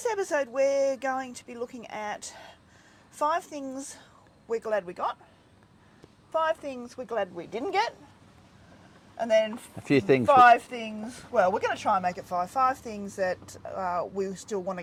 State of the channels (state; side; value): identical; both; correlation 1.00